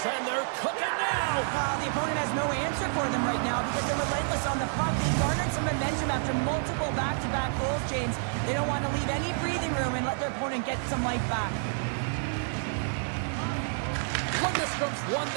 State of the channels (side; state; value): left; silent; 59 dB below the other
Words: And they're cooking now. The opponent has no answer for them right now because they're relentless on the puck. They garnered some momentum after multiple back-to-back goals, James. They don't want to leave any breathing room and let their opponent get some life back. Lundstrom's won